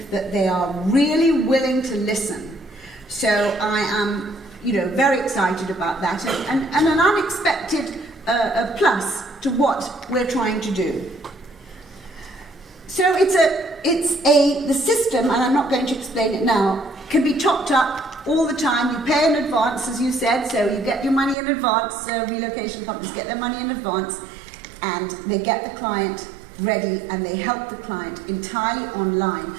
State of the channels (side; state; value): left; drops out; at 21.4 s